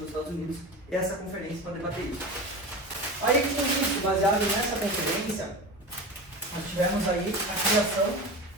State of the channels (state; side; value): normal; both; correlation 0.29